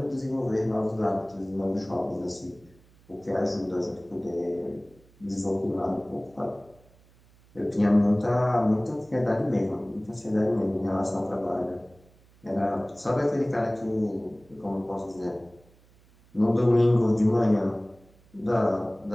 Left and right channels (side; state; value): right; noise; hum, 29 dB below the sound